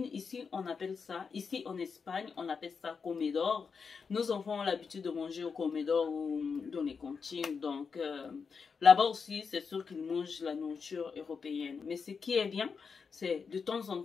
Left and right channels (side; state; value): right; quieter; 5.6 dB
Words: Ici, on appelle ça, ici en Espagne, on appelle ça comedor. Nos enfants ont l'habitude de manger au comedor ou dans les cantines. Donc, là-bas aussi, c'est sûr qu'ils mangent la nourriture européenne. Mais ce qui est bien, c'est de temps en